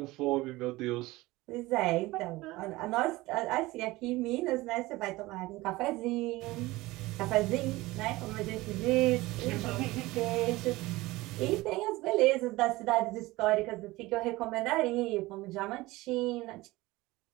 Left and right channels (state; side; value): quieter; left; 19.8 dB